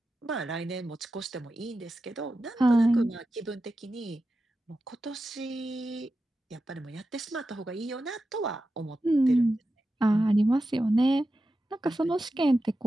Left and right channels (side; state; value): both; normal; correlation 0.91